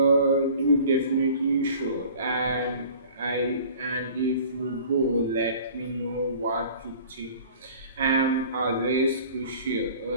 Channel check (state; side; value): inverted; both; correlation -0.47